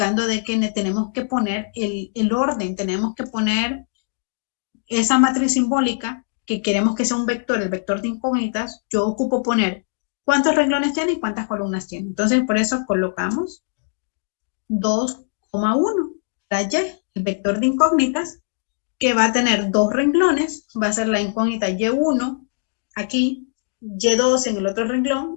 de que tenemos que poner el orden, tenemos que poner esa matriz simbólica que queremos que sea un vector, el vector de incógnitas. Yo ocupo poner cuántos renglones tiene y cuántas columnas tiene. Entonces por eso colocamos 2,1 la Y, el vector de incógnitas, que va a tener 2 renglones, va a ser la incógnita Y1 aquí, Y2 en el otro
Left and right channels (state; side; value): silent; right; digital silence